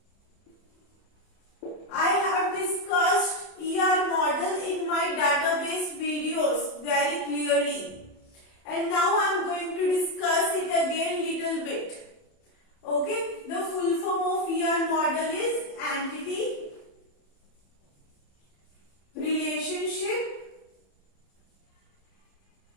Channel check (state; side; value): late; right; 30 ms